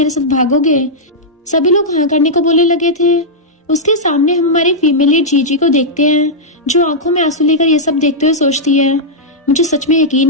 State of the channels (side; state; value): both; normal; correlation -0.08